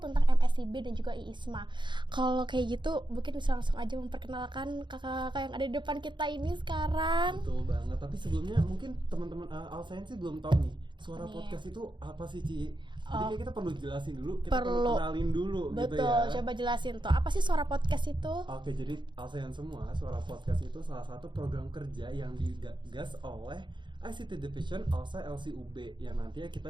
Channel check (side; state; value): left; late; 0.23 ms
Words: tentang MSIB dan juga IISMA. Kalau kayak gitu mungkin bisa langsung aja memperkenalkan kakak-kakak yang ada di depan kita ini sekarang. Betul banget, tapi sebelumnya mungkin teman-teman ALSA sih belum tahu nih suara podcast itu apa sih Ci? Jadi kayak kita perlu jelasin dulu, kita perlu kenalin dulu. Betul, gitu ya. Coba jelasin tuh, apa sih suara podcast itu? Oke, jadi ALSA semua, suara podcast itu salah satu program kerja yang digagas oleh ICT Division ALSA LCUB, yang nantinya kita